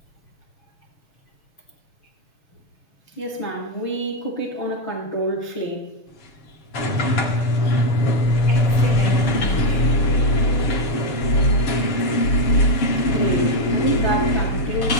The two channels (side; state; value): right; late; 7.1 ms